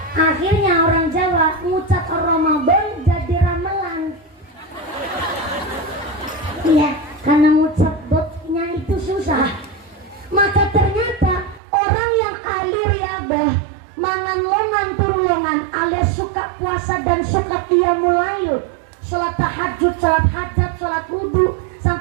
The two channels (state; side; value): drops out; left; at 11.6 s